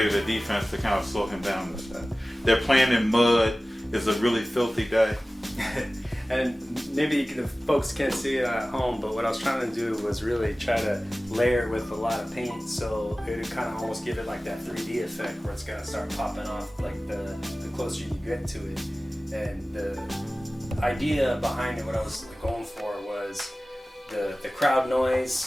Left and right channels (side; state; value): both; normal; correlation 0.97